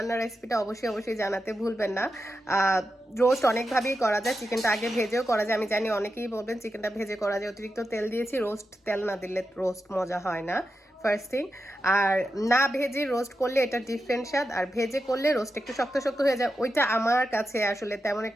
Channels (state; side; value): normal; both; correlation 0.89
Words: রেসিপিটা অবশ্যই জানাতে ভুলবেন না। রোস্ট অনেকভাবেই করা যায়, চিকেনটা আগে ভেজেও করা যায়। আমি জানি অনেকেই বলবেন চিকেনটা ভেজে করা যায়, অতিরিক্ত তেল দিয়েছি, রোস্ট তেল না দিলে রোস্ট মজা হয় না, ফার্স্ট থিং। আর না ভেজে রোস্ট করলে এটা ডিফারেন্ট স্বাদ, আর ভেজে করলে রোস্ট একটু শক্ত শক্ত হয়ে যায়, ওইটা আমার কাছে আসলে তেমন